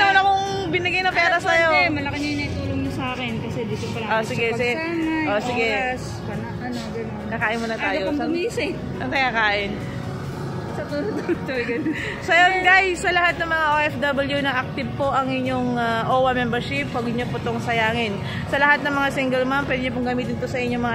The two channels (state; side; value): identical; both; correlation 1.00